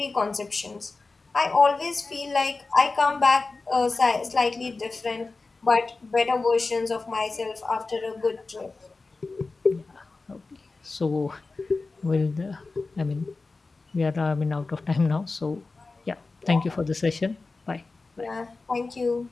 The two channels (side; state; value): right; quieter; 3.7 dB